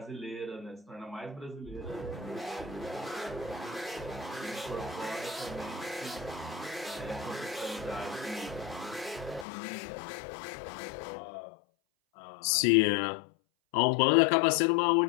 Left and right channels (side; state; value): right; drops out; at 9.5 s